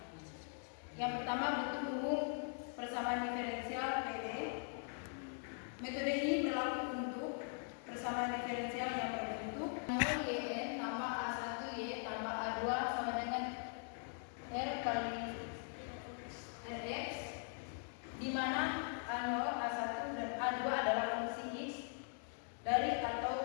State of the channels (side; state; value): right; silent; 50 dB below the other